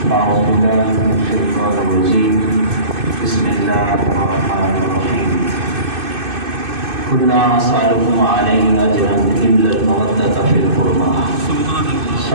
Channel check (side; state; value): left; late; 2.6 ms